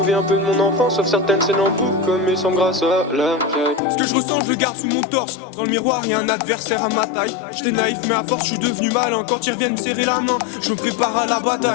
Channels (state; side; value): drops out; right; at 3.8 s